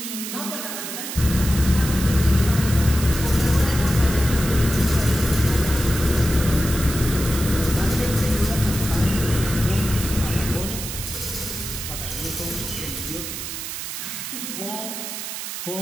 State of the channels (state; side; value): noise; right; hiss, 7 dB below the sound